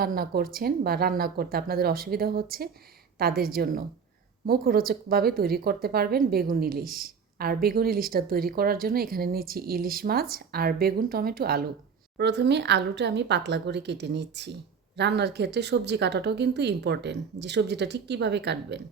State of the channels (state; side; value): quieter; left; 6.2 dB